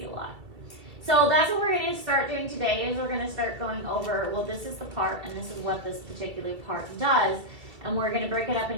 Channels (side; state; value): left; late; 2.2 ms